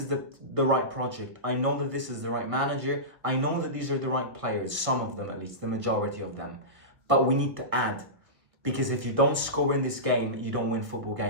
the right project. I know that this is the right manager. I know that these are the right players. Some of them, at least, the majority of them. But we need to add. Because if you don't score in this game, you don't win football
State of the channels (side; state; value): left; late; 1.6 ms